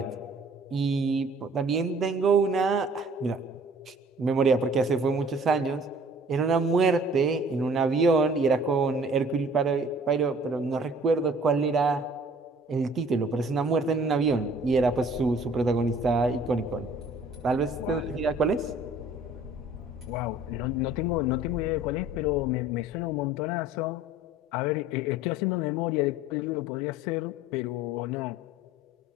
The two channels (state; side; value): normal; both; correlation 0.52